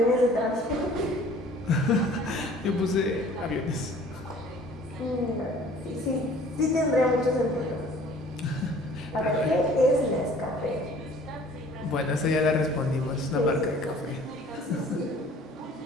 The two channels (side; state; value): both; normal; correlation 0.51